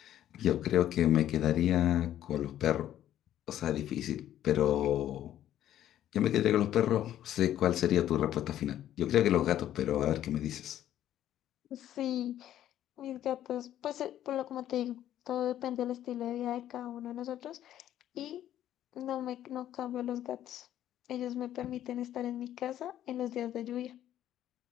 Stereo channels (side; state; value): right; quieter; 11.8 dB